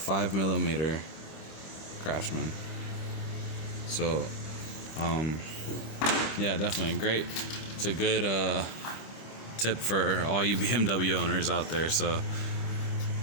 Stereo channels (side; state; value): right; late; 25 ms